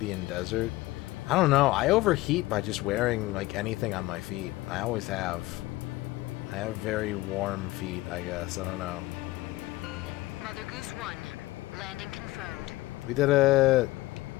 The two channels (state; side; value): quieter; right; 18.8 dB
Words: desert? I don't know. I overheat by just wearing, like, anything on my feet. I always have. I have very warm feet, I guess. I don't know. Mother Goose 1, landing confirmed. We did it!